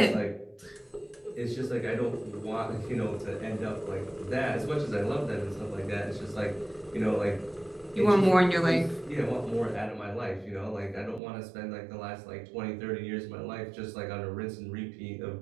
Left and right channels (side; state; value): left; drops out; at 11.2 s